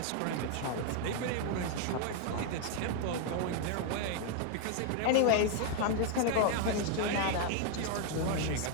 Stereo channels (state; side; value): different; both; correlation 0.00